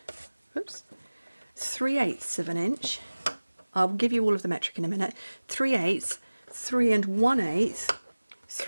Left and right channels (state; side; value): inverted; both; correlation -1.00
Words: oops, 3/8 of an inch. I'll give you all of the metric in a minute. 3/8, 3 1/8,